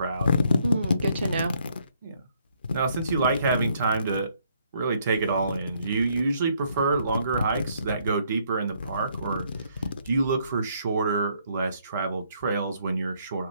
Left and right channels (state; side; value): inverted; both; correlation -0.69